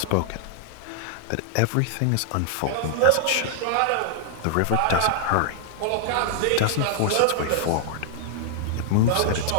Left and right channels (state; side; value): different; both; correlation 0.00